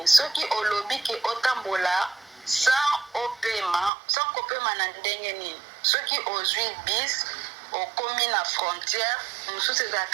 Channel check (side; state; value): left; drops out; at 3.9 s